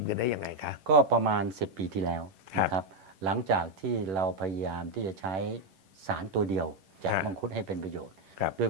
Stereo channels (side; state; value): left; late; 11 ms